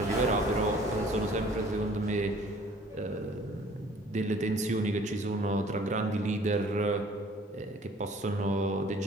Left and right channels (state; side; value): normal; both; correlation 0.53